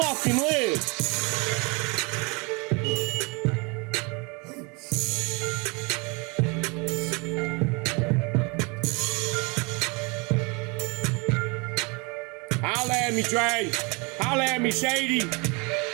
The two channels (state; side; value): quieter; left; 29.4 dB